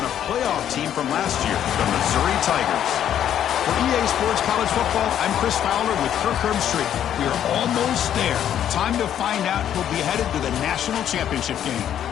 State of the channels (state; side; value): quieter; right; 10.2 dB